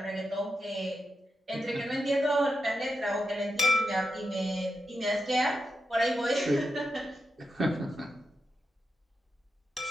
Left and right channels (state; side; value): normal; both; correlation 0.88